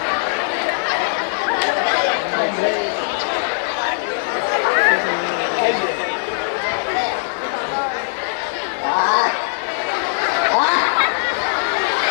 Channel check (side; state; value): right; silent; 66 dB below the other